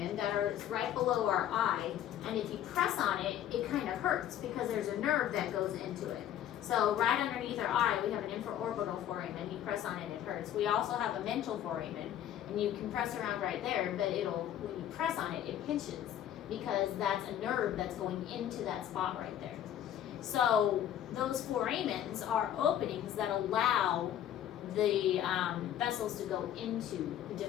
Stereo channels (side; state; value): right; quieter; 10.9 dB